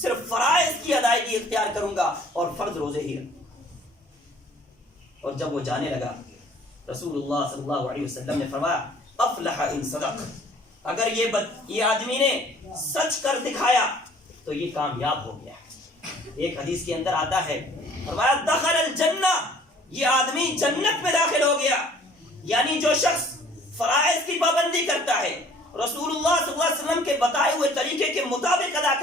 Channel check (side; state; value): both; normal; correlation 0.55